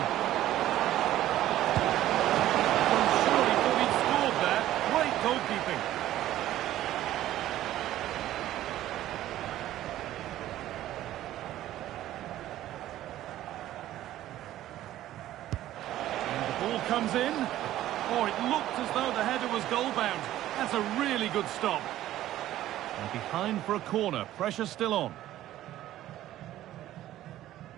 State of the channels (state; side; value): quieter; left; 13.7 dB